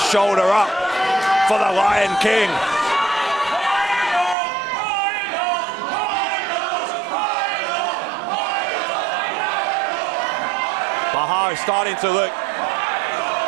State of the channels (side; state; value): left; drops out; at 4.4 s